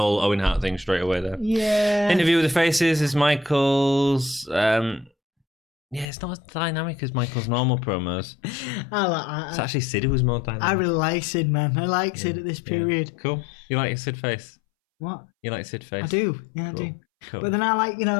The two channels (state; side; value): drops out; right; at 6.1 s